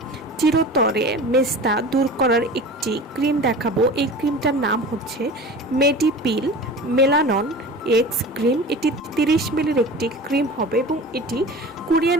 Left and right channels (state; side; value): normal; both; correlation 0.36